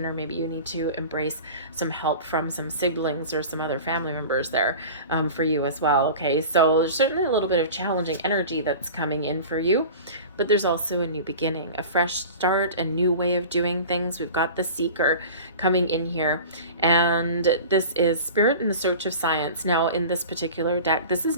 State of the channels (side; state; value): both; inverted; correlation -0.36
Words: maybe you need to embrace some help from some siblings or some other family members there for you as well, okay? So there's certainly a little bit of challenging energy that's coming in for you. But there's also a new beginning, a fresh start, a new way of doing things. We've got the Seeker coming in here, and this is Spirit in the Search of Science. Now, in this particular deck, this is